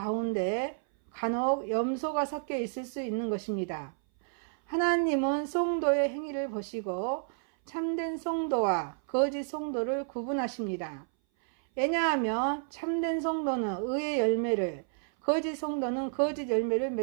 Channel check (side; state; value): left; silent; 57 dB below the other